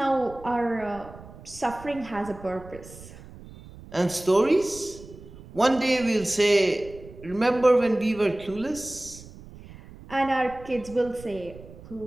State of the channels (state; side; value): noise; right; rumble, 18 dB below the sound